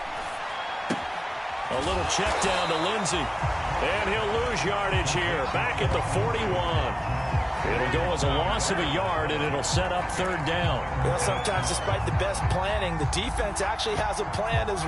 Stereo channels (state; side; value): identical; both; correlation 1.00